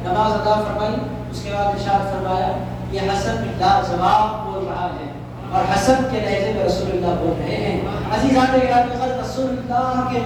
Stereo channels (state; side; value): identical; both; correlation 1.00